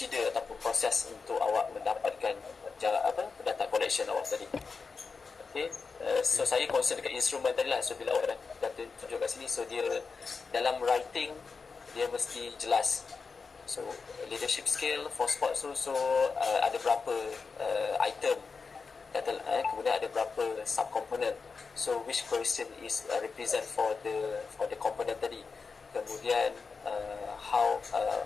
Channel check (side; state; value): right; quieter; 4.8 dB